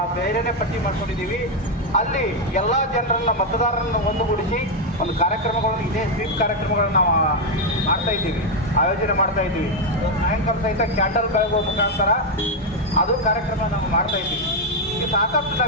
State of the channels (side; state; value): both; normal; correlation 0.03